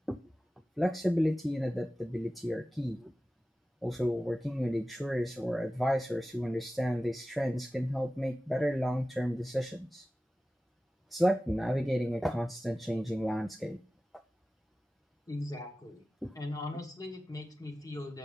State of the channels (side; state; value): both; normal; correlation 0.95